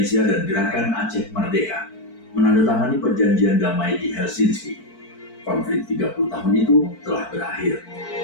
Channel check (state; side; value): late; right; 4.5 ms